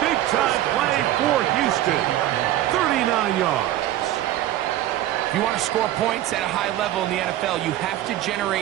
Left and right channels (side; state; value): left; quieter; 13.6 dB